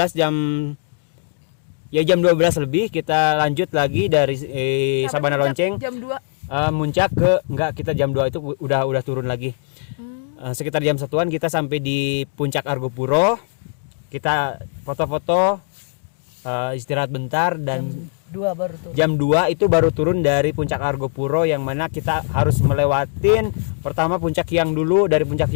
jam 12 lebih kita lanjut lagi dari Sabana Lonceng. Jam 2. Muncak kita jam 2 itu udah turun lagi. Sekitar jam 1-an kita sampai di puncak Argopuro. Kita foto-foto, istirahat bentar, dan jam 2 itu baru turun dari puncak Argopuro, yang mana kita harus melewatin pertama puncak Hyang dulu. Dari puncak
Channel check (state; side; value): silent; right; digital silence